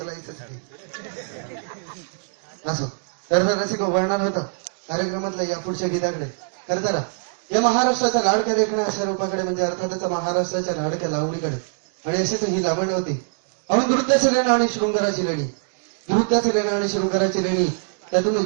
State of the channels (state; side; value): silent; left; digital silence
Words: ते असो. तर रसिक वळणार होतं कार्यक्रमातल्या या पुढच्या गीताकडे. खरं तर या महाराष्ट्राचा लाडका देखणा अशा रूपाकडे म्हणजे अर्थातच महाराष्ट्राच्या लाडक्या लावणीकडे आणि अशीच ही लावणी होती. अहो नृत्याची लेणी आणि शृंगाराची लेणी, नृत्याची लेणी आणि शृंगाराची लेणी, त्यातून